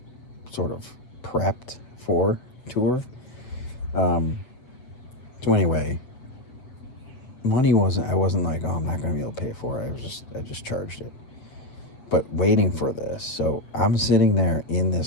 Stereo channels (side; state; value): right; late; 7.3 ms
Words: sort of prepped for tour. So anyway, I wasn't like, oh, I'm not going to be able to pay for it. I just charged it. But waiting for this. So I'm sitting there in